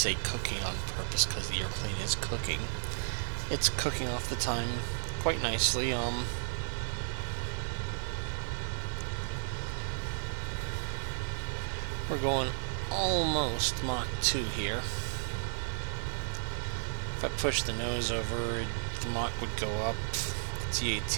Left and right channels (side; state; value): left; silent; 55 dB below the other